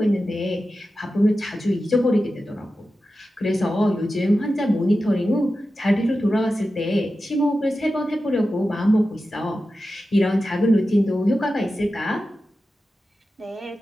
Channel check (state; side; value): normal; both; correlation 0.93